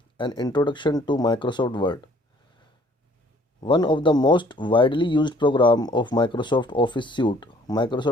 An introduction to Microsoft Word. One of the most widely used program of Microsoft Office suite.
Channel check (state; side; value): normal; both; correlation 0.58